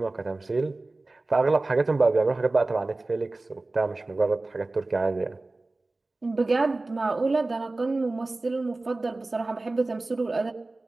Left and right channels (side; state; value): left; quieter; 3.1 dB